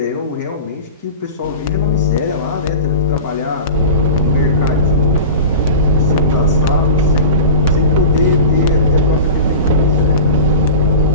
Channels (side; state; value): both; inverted; correlation -0.32